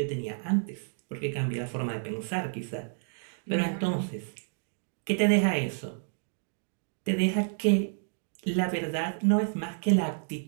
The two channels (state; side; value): silent; left; digital silence